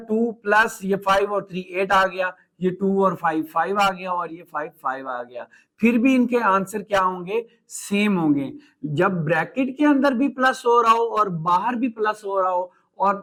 2 प्लस ये 5 और 3 8 आ गया, ये 2 और 5 5 आ गया, और ये 5 5 आ गया। फिर भी इनके आंसर क्या होंगे, सेम होंगे। जब ब्रैकेट के अंदर भी प्लस हो रहा हो और बाहर भी प्लस हो रहा हो,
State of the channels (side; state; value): both; identical; correlation 1.00